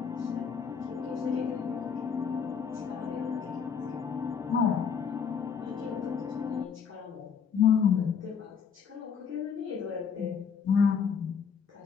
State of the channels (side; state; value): right; quieter; 6.7 dB